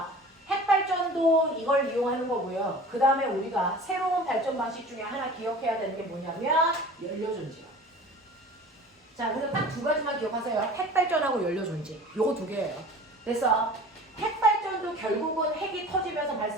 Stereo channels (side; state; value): both; normal; correlation 0.41